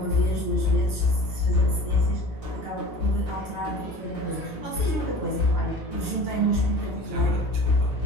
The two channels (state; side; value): normal; both; correlation 0.41